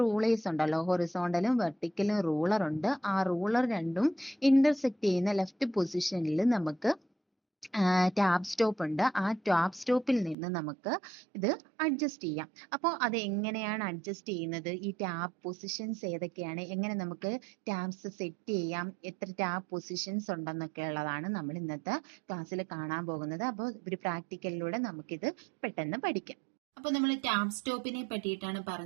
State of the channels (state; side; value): drops out; left; at 10.4 s